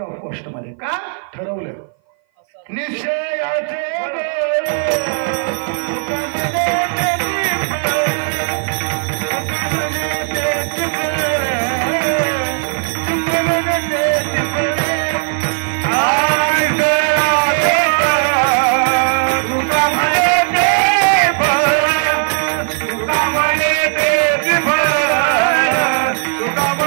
कॉस्ट मध्ये. का ठरवलं? निश्चयाचे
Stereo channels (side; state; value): left; silent; 58 dB below the other